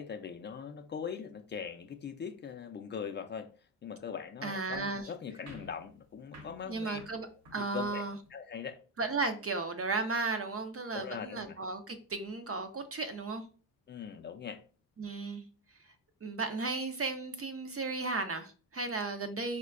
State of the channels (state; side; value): normal; both; correlation 0.06